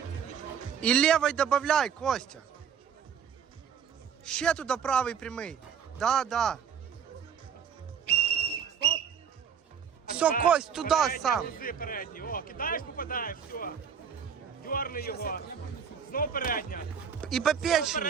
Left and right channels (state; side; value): quieter; left; 7.5 dB